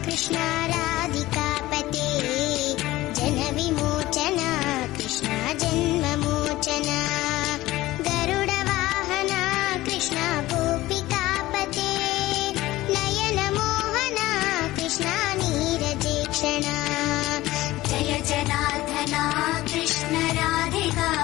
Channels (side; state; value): right; quieter; 17.4 dB